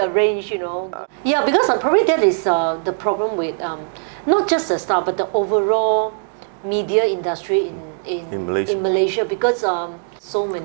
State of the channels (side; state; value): left; silent; digital silence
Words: Yeah, because probably that is the problem with not just the Star, but the overall media industry in Malaysia, because so